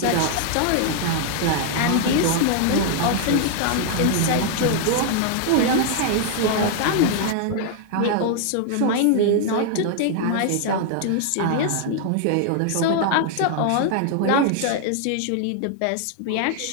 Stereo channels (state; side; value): different; both; correlation 0.00